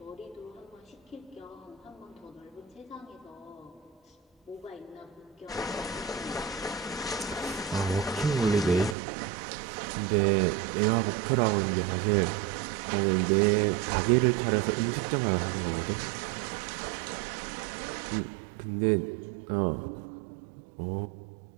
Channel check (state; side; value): drops out; left; at 9.0 s